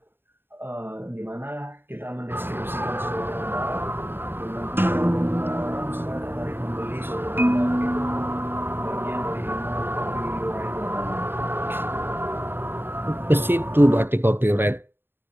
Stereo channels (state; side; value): late; left; 0.10 ms